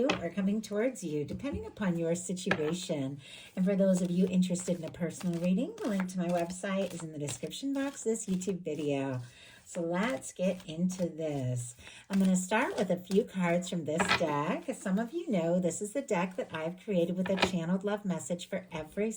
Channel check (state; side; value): identical; both; correlation 1.00